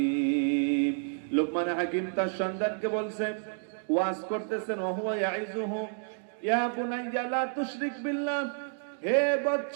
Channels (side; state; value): left; silent; digital silence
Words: লোকমান হাকিম তার সন্তানকে বলছে, ওয়াজ করতেছেন, وَهُوَ يَعِظُهُ يَا بُنَيَّ لَا تُشْرِكْ بِاللَّهِ, হে